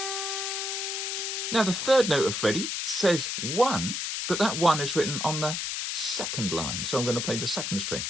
Now the third note of Freddie says 1, but that 1 is written on the second line. So I'm going to play the second string.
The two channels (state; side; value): noise; left; hiss, 2 dB below the sound